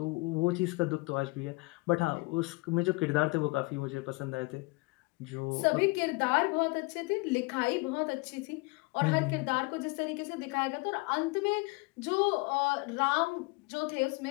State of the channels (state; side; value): quieter; right; 26.3 dB